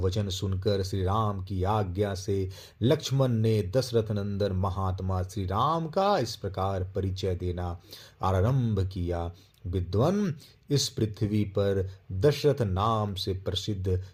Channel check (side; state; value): both; identical; correlation 1.00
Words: सुनकर श्री राम की आज्ञा से लक्ष्मण ने दशरथ नंदन महात्मा श्री राम का इस प्रकार परिचय देना आरंभ किया। विद्वान इस पृथ्वी पर दशरथ नाम से प्रसिद्ध